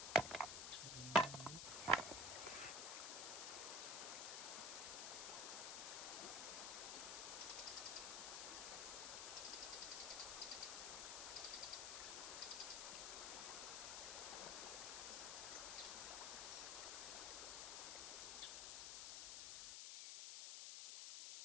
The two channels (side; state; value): left; noise; hiss, 2 dB below the sound